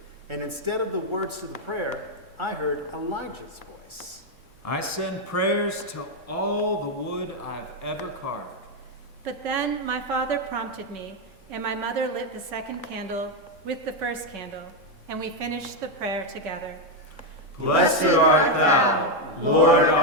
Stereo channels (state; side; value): late; left; 3.6 ms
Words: And instead of the words to the prayer, I heard Elijah's voice. I send prayers to all the wood I've ever carved. But then my father prompted me, and my mother lit the second candle with the first candle, and we finished the prayer together. Blessed art thou, Lord